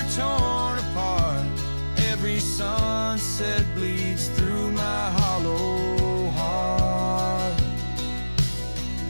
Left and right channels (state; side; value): inverted; both; correlation -1.00